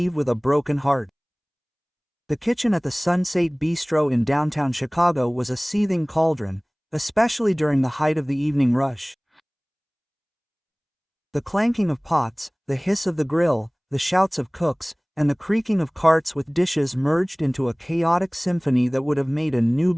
with a broken heart. The kitchen at the Sunset Bistro in downtown Chicago was a seething cauldron, especially during the height of the evening rush. The clanking of pots, the hiss of the grill, the shouts of cooks, and the creaking of carts with dishes merged into a chaotic symphony that would have made a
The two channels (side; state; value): both; identical; correlation 1.00